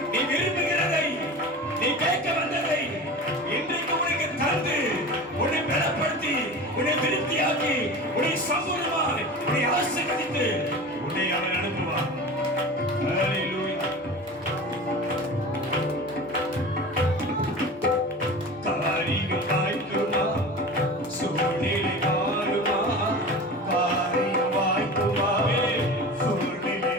நீ விரும்புகிறதை, நீ கேட்க வந்ததை இன்றைக்கு உனக்கு தந்து உன்னை பலப்படுத்தி, உன்னை திருப்தியாக்கி, உன்னை சம்பூர்ணமாய் உன்னை ஆசீர்வதித்து உன்னை அவர் அனுப்புவார். ஹல்லேலூயா. காரியம் வாய்க்குமா, சூழ்நிலை மாறுமா. காரியம் வாய்க்குமா, சூழ்நிலை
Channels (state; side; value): normal; both; correlation 0.33